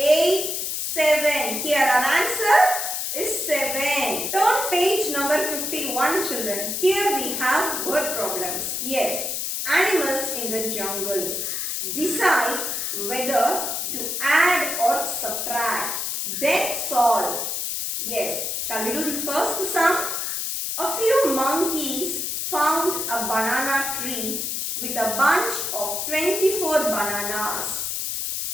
7. Here our answer is 7. Turn page number 51, children. Here we have word problems. Yes, animals in the jungle. Decide whether to add or subtract. Then solve. Yes, shall we do the first sum? A few monkeys found a banana tree with a bunch of 24 bananas.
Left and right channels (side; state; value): left; noise; hiss, 2 dB below the sound